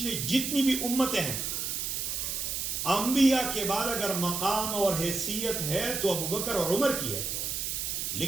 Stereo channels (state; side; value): noise; right; hiss, 2 dB below the sound